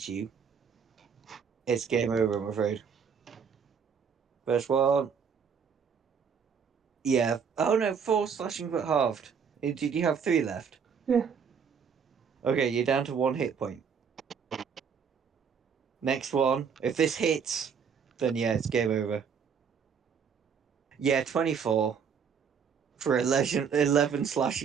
you, it's game over, I'm afraid. First one. Yeah. Oh no, 4 slashing but halved. Did you have 3 left? Yeah. Okay, you're down to 1 hit point. Next one. If this hits, then yeah, it's game over. Yeah, 24 for 11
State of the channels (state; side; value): quieter; left; 6.6 dB